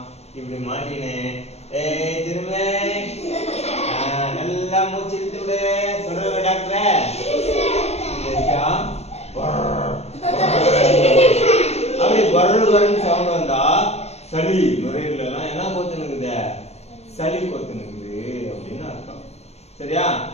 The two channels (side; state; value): right; late; 0.31 ms